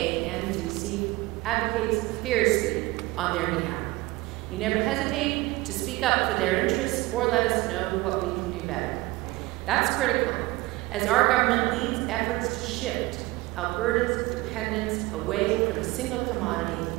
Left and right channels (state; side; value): quieter; left; 20.6 dB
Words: advocates fiercely on their behalf. You never hesitate to speak up for their interests or let us know what we can do better. That's critical, as our government leads efforts to shift Alberta's dependence away from a single commodity,